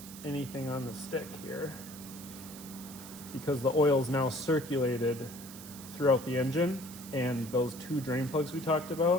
anything on the stick here, because the oil is now circulated throughout the engine and those 2 drain plugs we talked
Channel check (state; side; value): noise; right; hiss, 15 dB below the sound